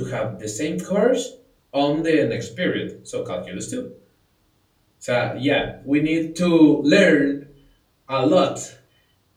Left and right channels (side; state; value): both; identical; correlation 1.00